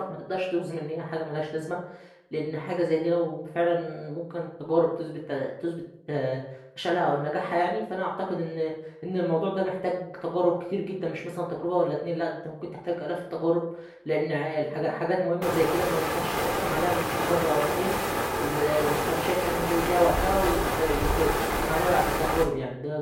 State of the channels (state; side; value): identical; both; correlation 1.00